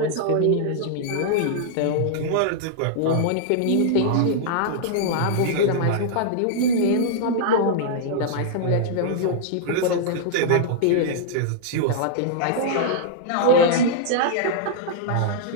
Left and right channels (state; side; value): different; both; correlation -0.01